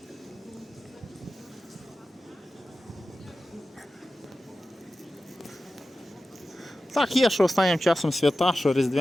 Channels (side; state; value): both; normal; correlation 0.94